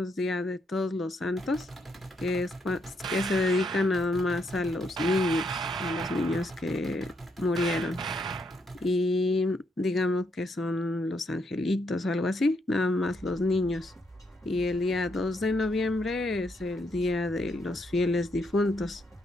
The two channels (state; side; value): normal; both; correlation 0.76